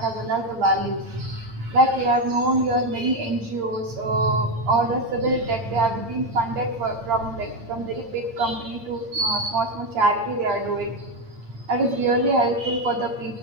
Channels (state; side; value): late; left; 8.7 ms